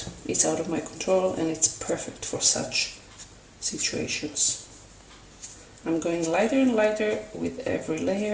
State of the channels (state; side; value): identical; both; correlation 1.00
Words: is out of my control, and it's perfect for such situations. I'm going lighter and lighter with every